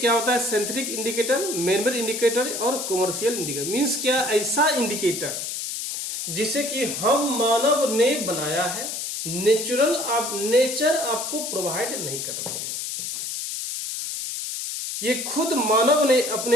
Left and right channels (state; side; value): noise; left; hiss, 5 dB below the sound